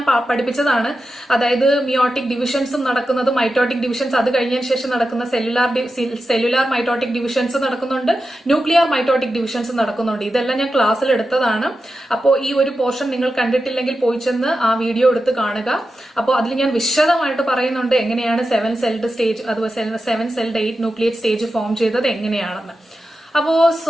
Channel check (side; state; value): both; normal; correlation 0.91